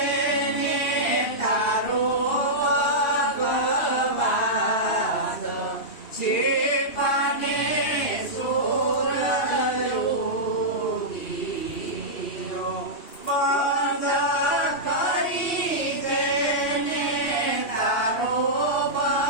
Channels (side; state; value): right; late; 2.7 ms